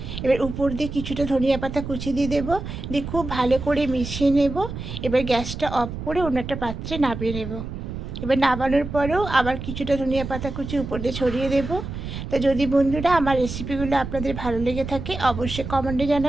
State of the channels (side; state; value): right; noise; rumble, 7 dB below the sound